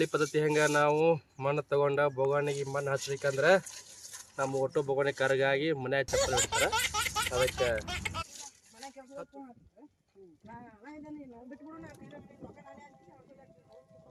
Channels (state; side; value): identical; both; correlation 1.00